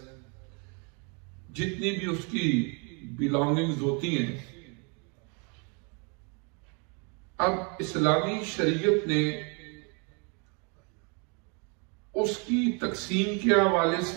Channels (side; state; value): left; quieter; 34.7 dB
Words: جتنی بھی اس کی بلانگنگز ہوتی ہیں، اب اسلامی شریعت نے اس کی تقسیم کے حوالے